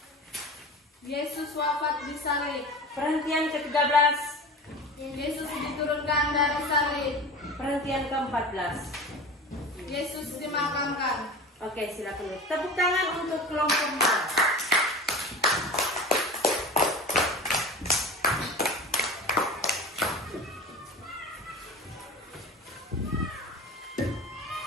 Yesus wafat di salib. Perhentian ke-13. Yesus diturunkan dari salib. Perhentian ke-14. Yesus dimakamkan. Oke, silakan. Tepuk tangan untuk kelompok A.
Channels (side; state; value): both; normal; correlation 0.34